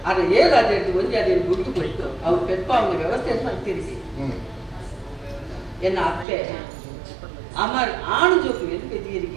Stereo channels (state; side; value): drops out; left; at 6.2 s